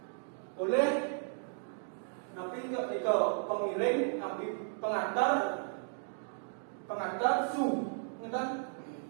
Oleh napi ke pengiring, napi pengantar su, ngeten?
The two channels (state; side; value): silent; left; digital silence